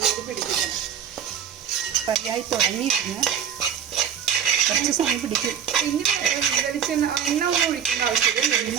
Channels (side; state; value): left; quieter; 8.3 dB